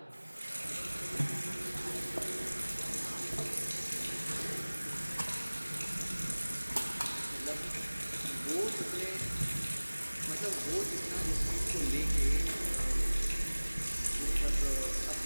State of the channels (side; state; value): both; inverted; correlation -1.00